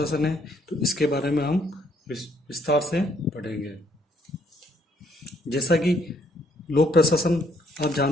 है तो इसके बारे में हम विस्तार से पढ़ेंगे। जैसा कि लोक प्रशासन, आप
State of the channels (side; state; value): both; normal; correlation 0.68